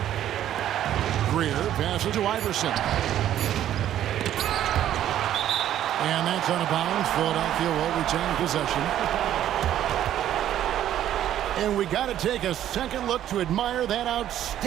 Greer passes to Iverson. And that's out of bounds. Philadelphia will retain possession. And we got to take a second look to admire that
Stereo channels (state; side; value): quieter; left; 11.6 dB